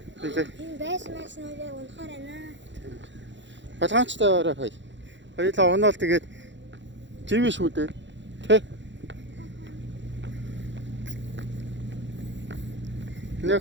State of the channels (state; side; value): late; left; 0.53 ms